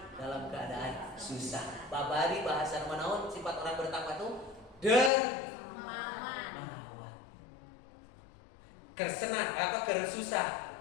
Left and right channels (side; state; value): right; drops out; at 5.1 s